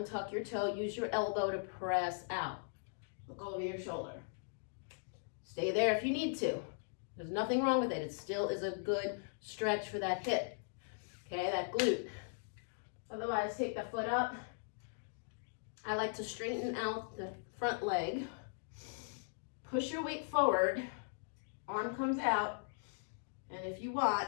your toe, use your elbow to press out. Look over your shoulder. Stay there if you need to. There's nothing wrong with it. It still is a good stretch for that hip, okay, that glute. Otherwise, take the foot up. I like to straighten out the front leg. Push your weight forward. Arm comes out. And if you want,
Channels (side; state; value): right; silent; digital silence